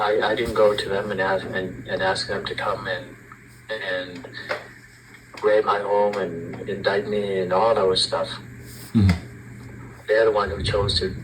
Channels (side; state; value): both; identical; correlation 1.00